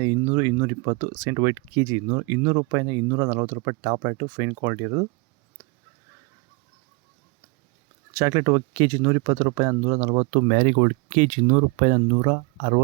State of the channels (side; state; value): left; quieter; 30.0 dB